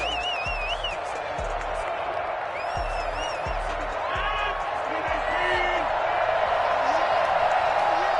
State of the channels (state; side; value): identical; both; correlation 1.00